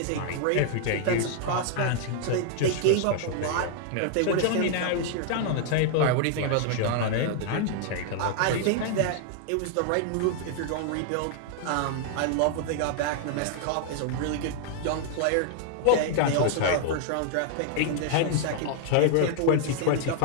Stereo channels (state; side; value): different; both; correlation 0.00